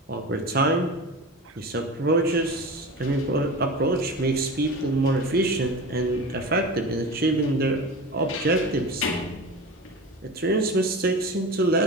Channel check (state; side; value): normal; both; correlation 0.30